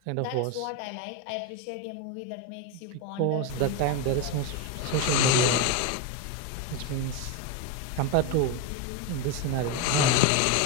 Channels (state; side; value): different; both; correlation 0.03